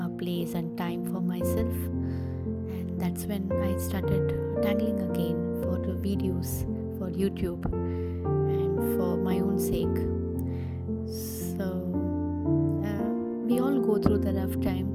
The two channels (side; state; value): both; identical; correlation 1.00